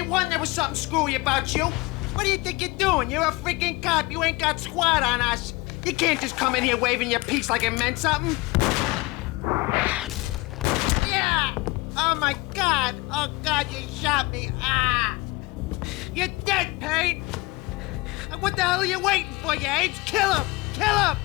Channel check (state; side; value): quieter; right; 22.9 dB